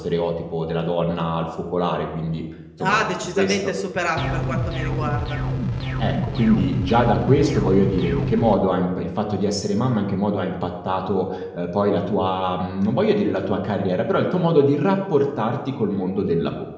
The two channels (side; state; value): both; identical; correlation 1.00